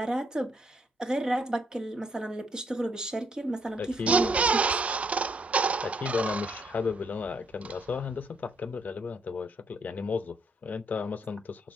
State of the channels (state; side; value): normal; both; correlation 0.71